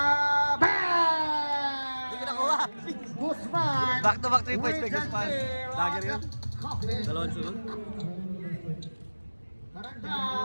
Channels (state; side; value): inverted; both; correlation -1.00